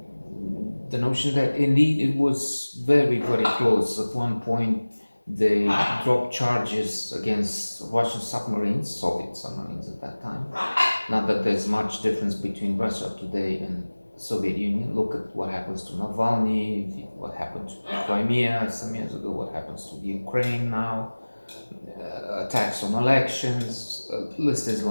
the notion that indeed it was very, very close. At one point, they dropped charges against Russian submarines, Soviet submarines at that time. Not that there's much difference between Russia today and the Soviet Union. Look at what happens to Navalny, what happened to Crimea some years ago, what happens to the Ukraine now, attacks on elections, list is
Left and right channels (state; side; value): inverted; both; correlation -1.00